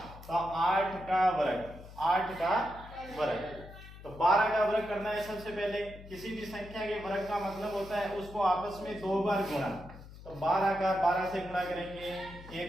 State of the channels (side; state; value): left; noise; hum, 16 dB below the sound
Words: तो 8 का वर्ग, 8 का वर्ग। तो 12 का वर्ग करना है सबसे पहले। किसी भी संख्या के वर्ग का मतलब होता है उसको आपस में 2 बार गुणा, तो 12 का 12 से गुणा करेंगे